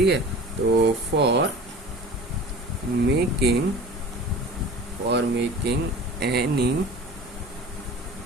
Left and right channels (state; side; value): normal; both; correlation 0.40